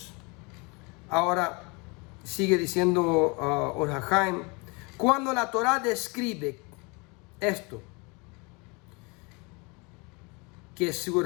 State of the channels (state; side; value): quieter; right; 29.2 dB